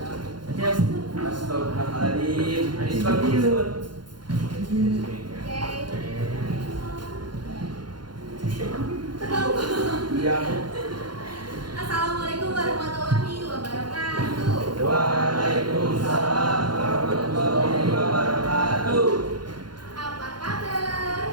Anis Bakirun. Iya. Assalamualaikum warahmatullahi wabarakatuh. Waalaikumsalam warahmatullahi wabarakatuh. Apa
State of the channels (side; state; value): left; late; 0.71 ms